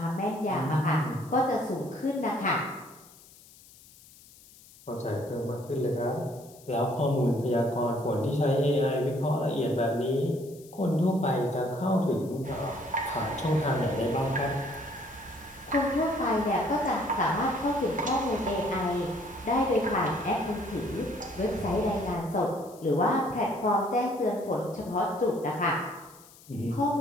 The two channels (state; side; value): noise; left; hiss, 23 dB below the sound